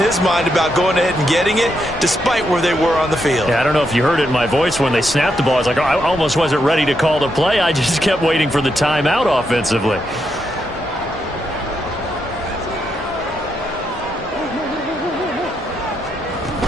mind about going ahead and getting it, despite where they were on the field. Yeah, I don't know if you heard it in my voice when they snapped the ball. I was like, oh, I almost wasn't ready to call the play. I just kept waiting for the timeout offensively.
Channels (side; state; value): both; normal; correlation 0.81